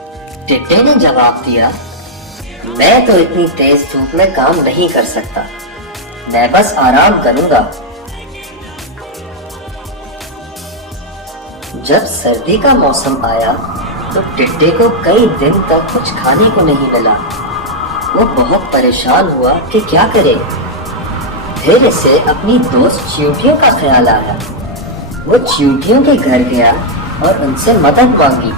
टिड्डे ने जवाब दिया, मैं तो इतनी तेज धूप में काम नहीं कर सकता, मैं बस आराम करूंगा। जब सर्दी का मौसम आया तो टिड्डे को कई दिन तक कुछ खाने को नहीं मिला। वो बहुत परेशान हुआ कि क्या करे। फिर इसे अपनी दोस्त चींटियों का ख्याल आया। वो चींटियों के घर गया और उनसे मदद मांगी।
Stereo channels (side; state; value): both; normal; correlation -0.03